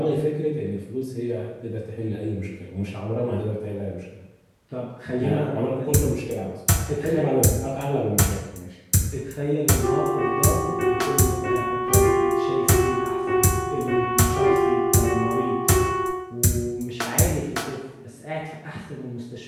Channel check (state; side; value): identical; both; correlation 1.00